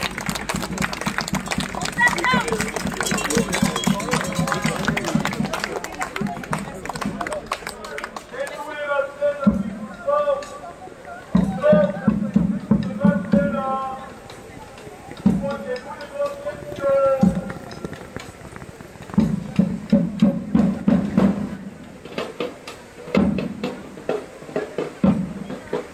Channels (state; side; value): identical; both; correlation 1.00